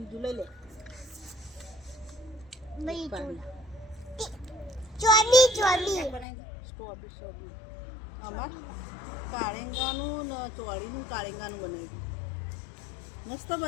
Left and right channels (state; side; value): drops out; right; at 6.2 s